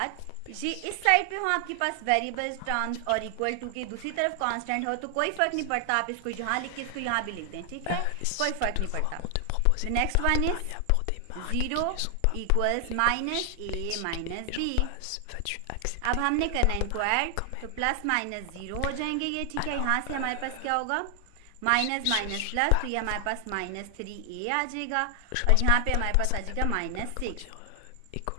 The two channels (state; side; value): different; both; correlation 0.00